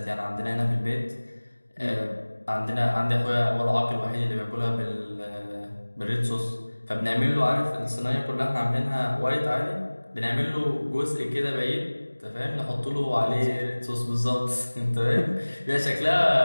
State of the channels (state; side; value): inverted; both; correlation -1.00